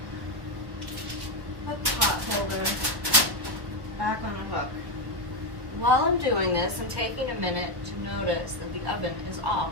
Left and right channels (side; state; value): left; late; 1.1 ms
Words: Put the pot holder back on the hook. While I'm doing this, I'm taking a minute to notice that the oven is